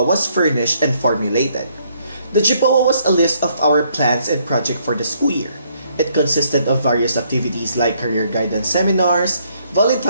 was furnished and formulated. The GPOA was a list of our plans and projects for the school year. It consisted of various activities like career guidance seminars,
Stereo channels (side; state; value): both; inverted; correlation -0.69